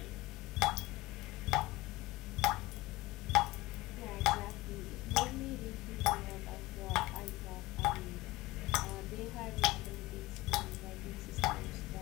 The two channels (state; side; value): quieter; right; 19.8 dB